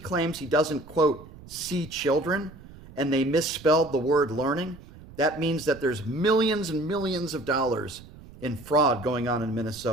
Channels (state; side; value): noise; right; rumble, 19 dB below the sound